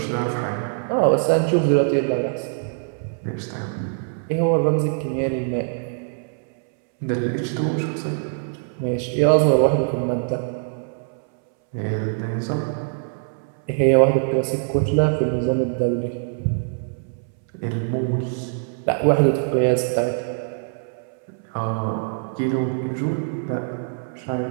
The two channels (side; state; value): left; silent; 63 dB below the other